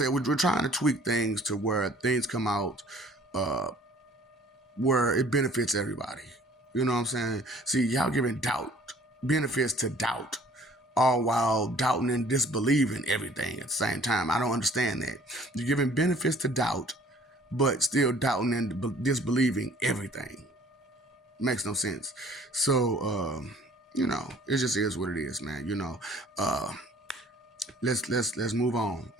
we're trying to tweak things to where things come out where it benefits everybody. You know what I'm saying? See, y'all giving benefits to doubt, all while doubting and disbelieving everything at the same time. I don't understand that. You're giving benefits to doubt, but still doubting and disbelieving everything. Makes no sense. So, it just is what it is, man. Let's move on,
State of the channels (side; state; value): both; normal; correlation 0.54